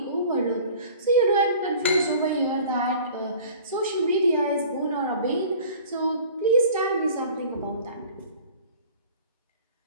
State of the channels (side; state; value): both; inverted; correlation -0.46